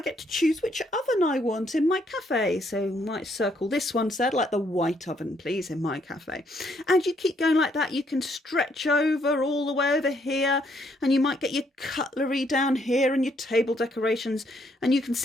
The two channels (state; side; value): normal; both; correlation 0.71